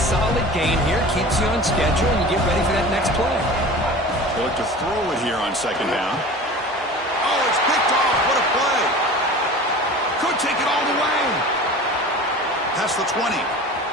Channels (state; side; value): normal; both; correlation 0.38